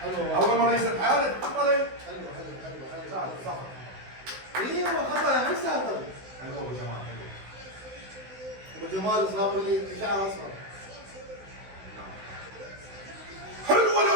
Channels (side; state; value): left; late; 16 ms